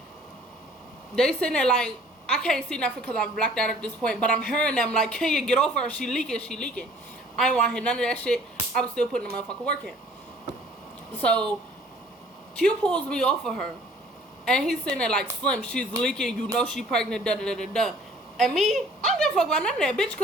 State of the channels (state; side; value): normal; both; correlation 0.54